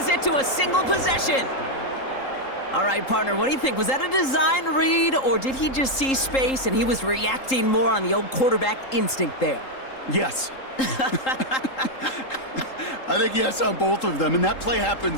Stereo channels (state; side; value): late; right; 3.8 ms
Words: to a single possession. All right, partner, what do you think? Was that a design read, or did he just see space and he was reacting more on the old quarterback instinct there? Yes. I think yes on both of them, and that play